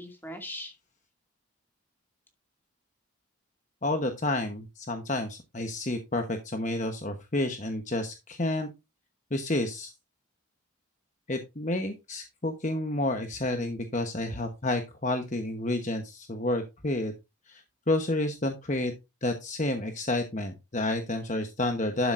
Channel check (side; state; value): both; normal; correlation 0.40